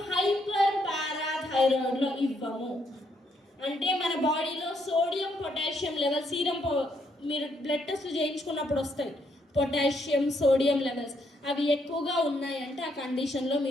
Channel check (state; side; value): normal; both; correlation 0.74